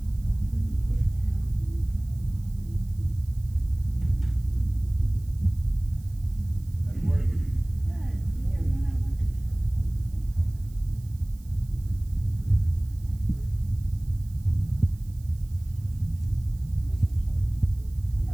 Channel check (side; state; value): right; noise; hiss, 27 dB below the sound